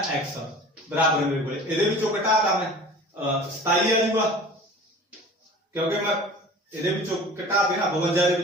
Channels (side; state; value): both; normal; correlation 0.41